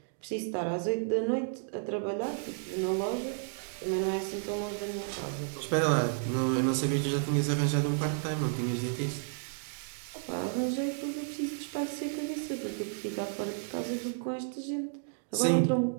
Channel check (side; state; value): left; silent; digital silence